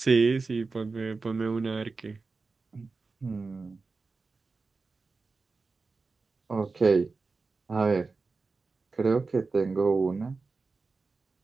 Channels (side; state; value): left; quieter; 4.1 dB